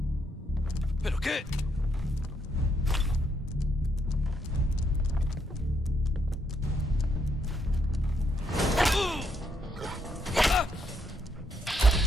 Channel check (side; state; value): both; normal; correlation 0.75